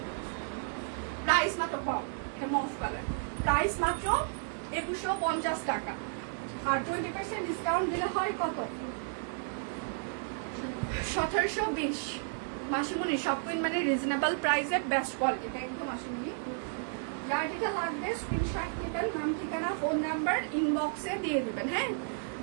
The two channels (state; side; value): silent; left; digital silence